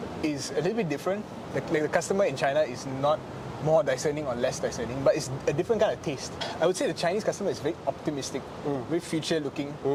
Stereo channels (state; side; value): identical; both; correlation 1.00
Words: is a little bit different. The customer in China is not more discerning or less discerning, but it's a different kind of taste. I would say the Chinese customer is very optimistic, very future-looking,